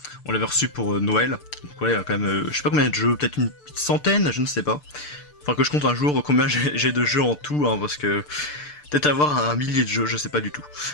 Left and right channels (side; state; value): right; late; 6.7 ms